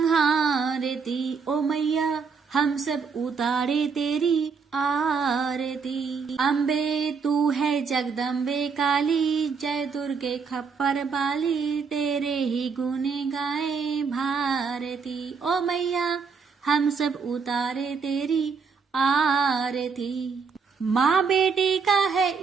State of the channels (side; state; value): left; quieter; 5.4 dB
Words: ओ मैया हम सब उतारे तेरी आरती। अम्बे तू है जगदम्बे काली, जय दुर्गे खप्पर बाली, तेरे ही गुण गाए भारती। ओ मैया हम सब उतारे तेरी आरती। माँ बेटी का है